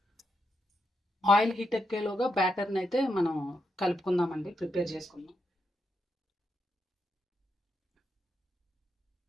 ఆయిల్ హీట్ ఎక్కేలోగా బ్యాటర్ని అయితే మనం కలుపుకుందామండి, ప్రిపేర్ చేసుకుందాం.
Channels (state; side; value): normal; both; correlation 0.83